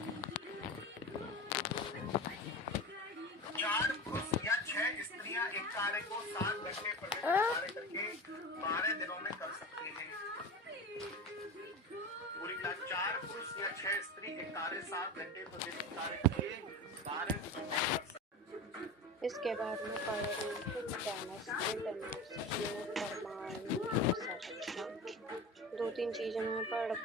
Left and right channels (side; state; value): both; normal; correlation 0.29